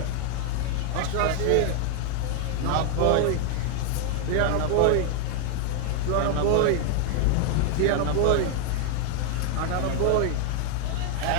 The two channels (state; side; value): different; both; correlation 0.00